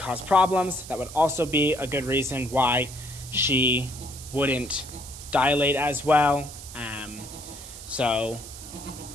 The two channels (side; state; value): right; noise; hiss, 14 dB below the sound